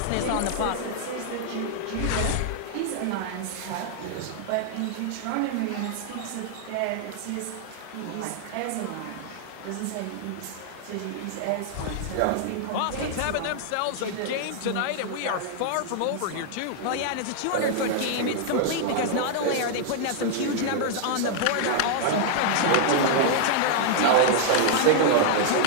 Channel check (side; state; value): both; different; correlation 0.00